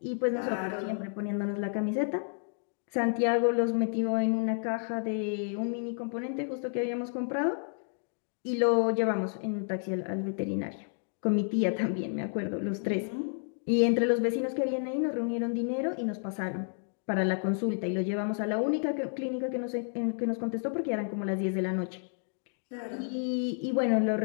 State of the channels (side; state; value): right; silent; digital silence